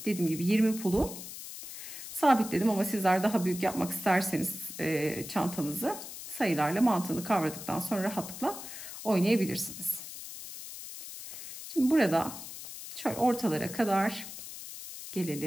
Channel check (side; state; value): left; noise; hiss, 11 dB below the sound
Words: Dediğim gibi 20 pulu sabitledim ama sizler daha büyük yapmak isterseniz çantanızı sayılarla mantığını kavradıktan sonra rahatlıkla oynayabilirsiniz. Şimdi burada şöyle ortalara kadar